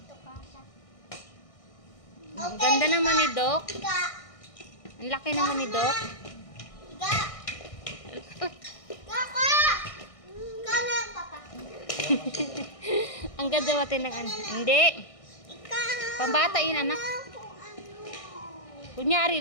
Ang ganda naman ni Doc. Higa. Ang laki naman ni Doc. Higa. Higa ka. Higa na, papa. Ang ganda natin ng ano. Hindi. Higa. Pambata yun, anak. Kung ano. Kunyari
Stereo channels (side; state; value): right; late; 1.6 ms